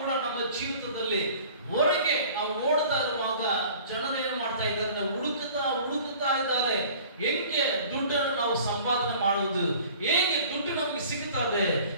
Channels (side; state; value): both; inverted; correlation -0.47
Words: ನಮ್ಮ ಜೀವಿತದಲ್ಲಿ ಹೊರಗೆ ನಾವು ನೋಡ್ತಾ ಇರುವಾಗ ಜನರೇನು ಮಾಡ್ತಾ ಇದ್ದಾರೆ? ನಾವು ಹುಡುಕುತ್ತಾ ಇದ್ದಾರೆ. ಹೇಗೆ ದುಡ್ಡನ್ನು ನಾವು ಸಂಪಾದನೆ ಮಾಡುವುದು, ಹೇಗೆ ದುಡ್ಡು ನಮಗೆ ಸಿಗುತ್ತದೆ,